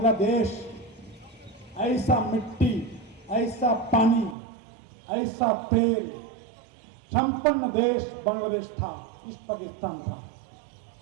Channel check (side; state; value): left; drops out; at 4.4 s